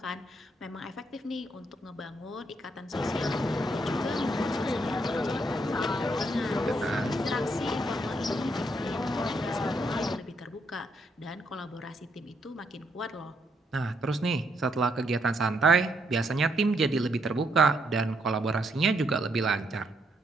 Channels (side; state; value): both; normal; correlation 0.75